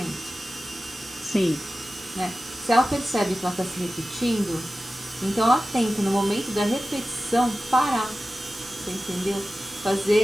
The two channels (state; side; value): normal; both; correlation 0.95